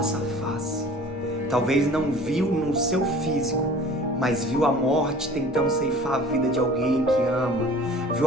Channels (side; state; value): both; normal; correlation 0.45